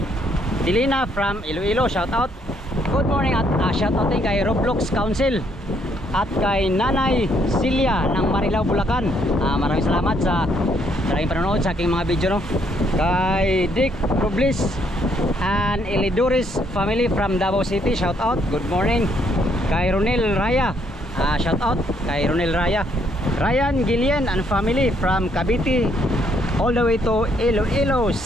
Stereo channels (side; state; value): both; normal; correlation 0.70